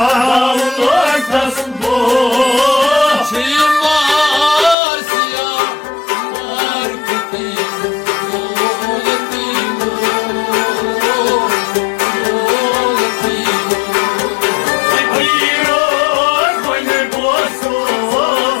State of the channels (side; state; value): right; drops out; at 4.8 s